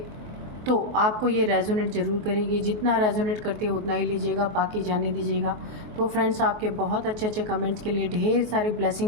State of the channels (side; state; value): left; late; 23 ms